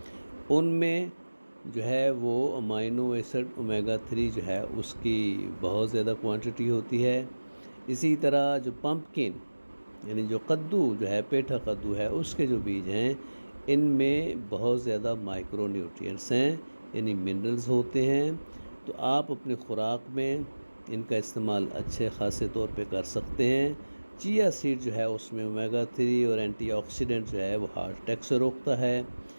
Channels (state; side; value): inverted; both; correlation -1.00